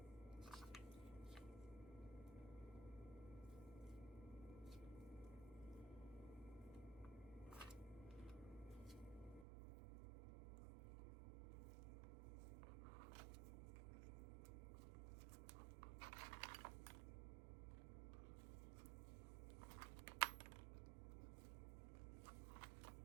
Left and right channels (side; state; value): left; drops out; at 9.5 s